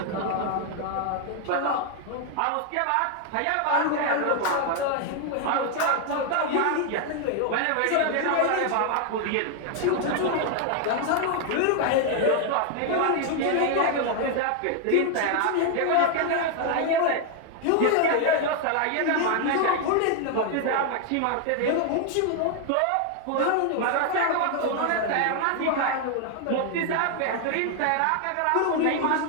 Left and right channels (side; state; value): both; different; correlation 0.00